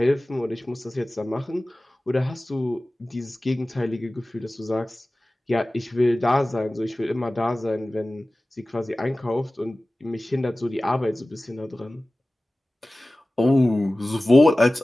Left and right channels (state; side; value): normal; both; correlation 0.97